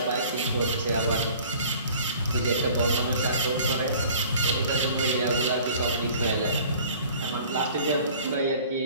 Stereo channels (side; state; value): both; inverted; correlation -0.49